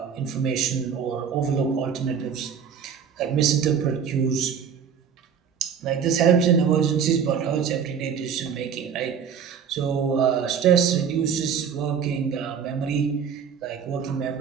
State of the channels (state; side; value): quieter; left; 7.3 dB